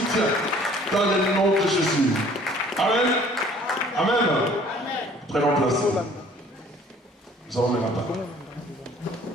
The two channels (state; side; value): normal; both; correlation 0.54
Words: dans le nom de Jésus. Amen. Amen. Amen. Prenons place. Nous allons mettre la parole.